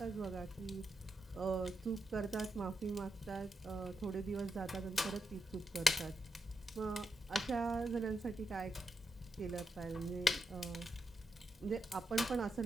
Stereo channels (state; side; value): normal; both; correlation 0.84